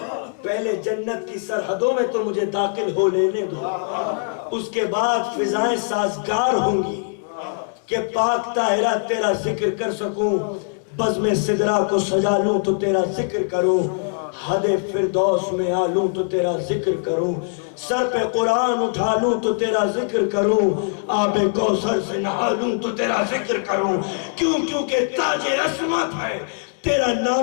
پہلے جنت کی سرحدوں میں تو مجھے داخل ہو لینے دو، اس کے بعد فضائیں سازگار ہوں گی کہ پاک طاہرہ تیرا ذکر کر سکوں. بزم سدرہ کو سجا لوں تو تیرا ذکر کروں، حد فردوس میں آلوں تو تیرا ذکر کروں. سر پہ قرآن اٹھا لوں تو تیرا ذکر کروں، آب کوثر سے نہا لوں تو تیرا ذکر کروں. کیونکہ تاج عصمت ہے تیرا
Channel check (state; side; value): silent; right; digital silence